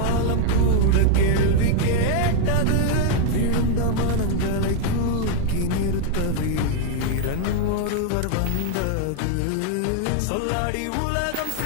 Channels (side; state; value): both; different; correlation 0.00